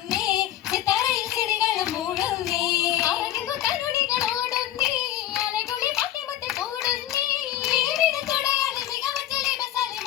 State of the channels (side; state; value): right; quieter; 12.8 dB